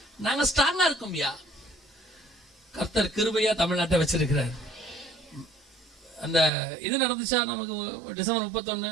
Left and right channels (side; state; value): left; drops out; at 6.5 s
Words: நாங்க ஸ்ட்ராங்கா இருக்கோம்யா. கர்த்தர் கிருபையா தமிழ்நாட்டை வச்சிருக்கிறார். அந்த இது நடந்துச்சா நமக்கு டிசம்பர் 31